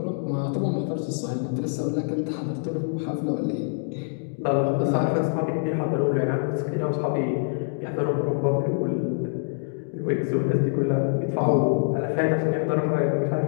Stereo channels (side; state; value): right; silent; digital silence